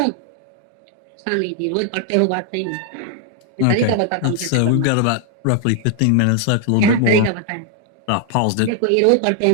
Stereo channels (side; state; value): both; different; correlation 0.00